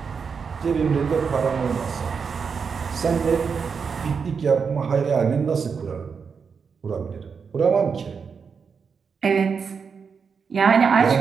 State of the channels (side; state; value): left; quieter; 5.9 dB